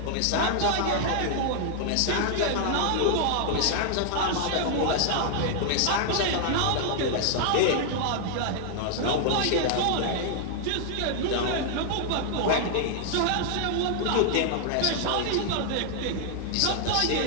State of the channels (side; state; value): both; different; correlation 0.00